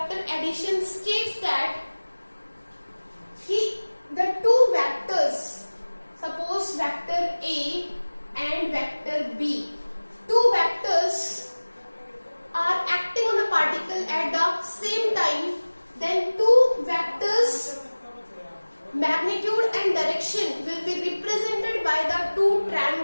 addition states that the two vectors, suppose vector A and vector B, two vectors are acting on a particle at the same time, then two vectors magnitude and direction will be represented by the two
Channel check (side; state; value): both; inverted; correlation -1.00